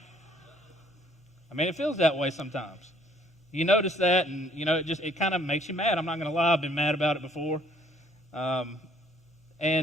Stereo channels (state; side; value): normal; both; correlation 0.62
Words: I mean, it feels that way sometimes. You notice that, and it kind of makes you mad. I'm not going to lie, I've been mad about it before.